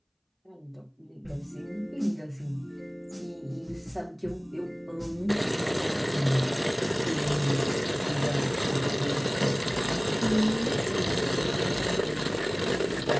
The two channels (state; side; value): identical; both; correlation 1.00